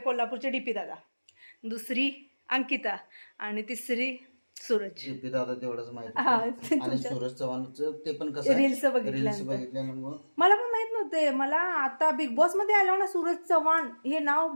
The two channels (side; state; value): both; inverted; correlation -1.00